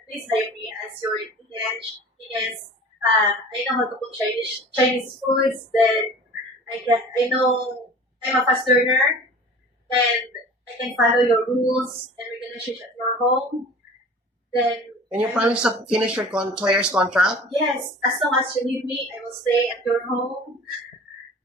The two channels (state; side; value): normal; both; correlation 0.42